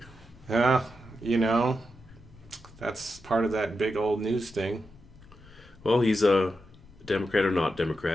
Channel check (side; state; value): left; noise; rumble, 23 dB below the sound